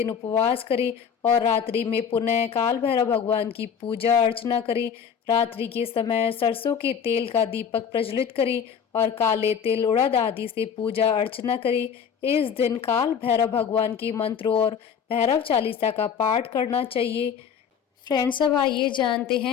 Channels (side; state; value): right; quieter; 7.4 dB